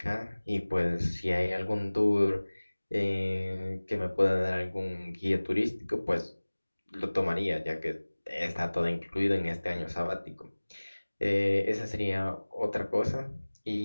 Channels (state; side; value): inverted; both; correlation -1.00